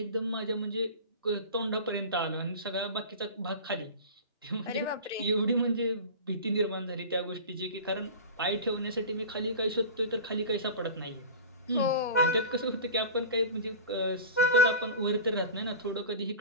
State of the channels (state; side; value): inverted; both; correlation -0.31